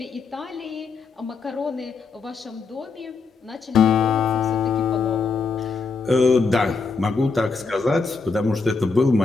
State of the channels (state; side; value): quieter; right; 4.5 dB